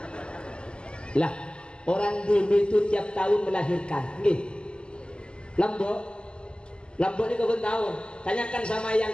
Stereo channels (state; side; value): late; right; 0.050 ms